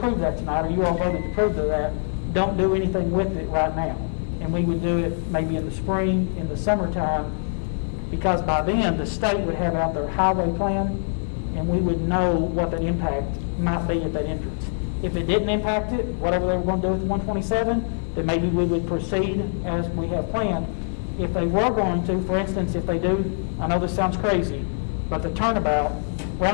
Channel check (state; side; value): silent; right; digital silence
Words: that tonight, or you all voted to approve of that, don't do anything with it right now. And we would do it maybe in the spring, in the summertime, because by then, the state would have out their highway plan, and we would know what that impact might be at that entrance. If it didn't impact it, whatever they were going to do with 127, then maybe we would proceed as we have planned. If they were going to, for instance, if they do, I know this sounds crazy, but the